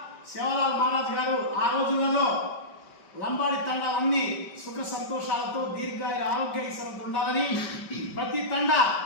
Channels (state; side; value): late; right; 5.2 ms